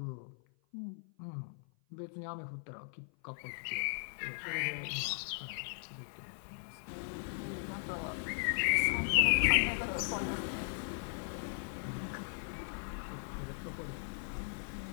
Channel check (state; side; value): silent; right; 52 dB below the other